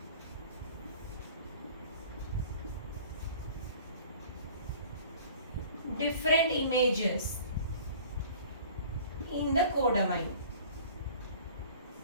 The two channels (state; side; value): inverted; both; correlation -0.47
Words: different images in the codomain.